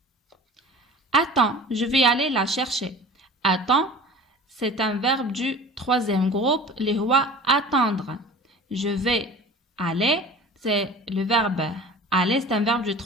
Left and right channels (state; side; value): normal; both; correlation 0.40